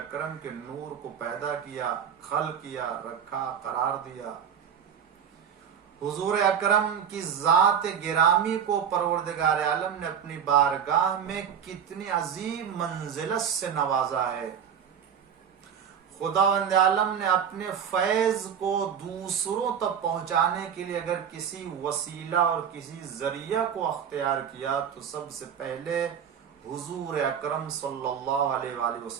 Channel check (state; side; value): quieter; left; 8.0 dB